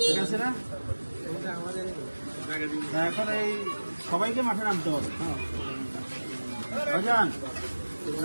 ঠিক আছে না? এখন এই সবাইকে মাঠে নামতে হবে। ভাইজান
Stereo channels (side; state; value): both; inverted; correlation -1.00